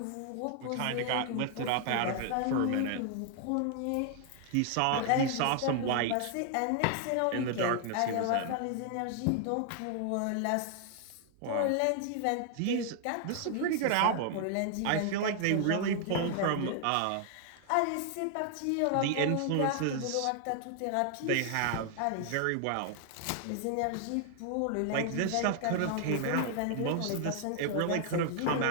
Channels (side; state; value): both; different; correlation 0.00